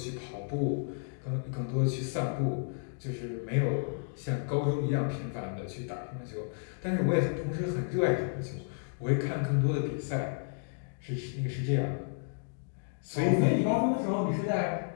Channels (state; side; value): silent; right; digital silence